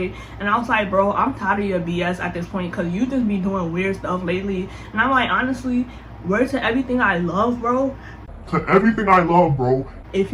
and I was like, bro, I'm tired of your BS at this point, because you just be doing weird stuff lately. And I'm like, honestly, word to everything I love, bro. To everything I love, bro. If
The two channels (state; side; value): identical; both; correlation 1.00